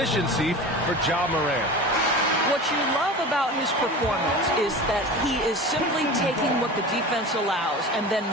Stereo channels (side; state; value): both; normal; correlation 0.33